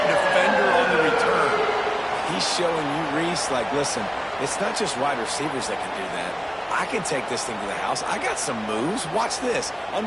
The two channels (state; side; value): identical; both; correlation 1.00